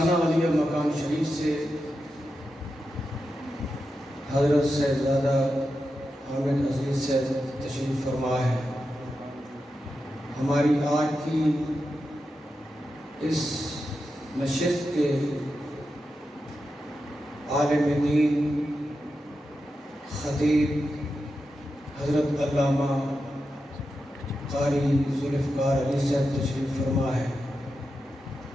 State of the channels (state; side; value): normal; both; correlation 0.89